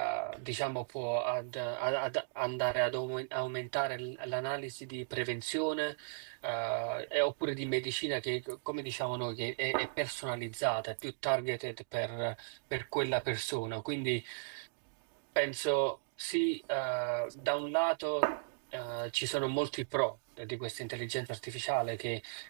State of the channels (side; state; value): left; silent; digital silence